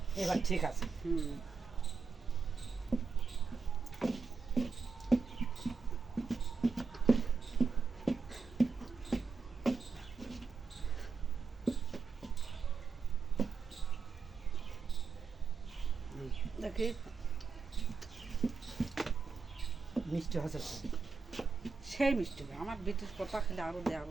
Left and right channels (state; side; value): quieter; left; 4.7 dB